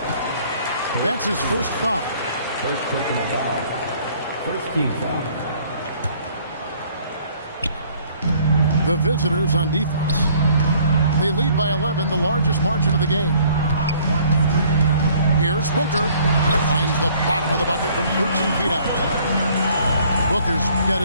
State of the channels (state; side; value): inverted; both; correlation -0.58